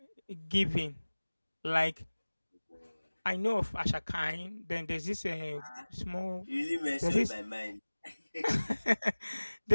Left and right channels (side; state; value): both; inverted; correlation -1.00